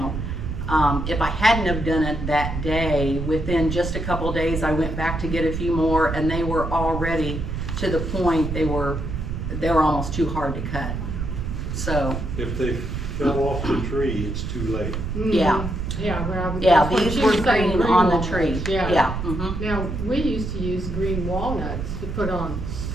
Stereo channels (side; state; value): right; noise; rumble, 4 dB below the sound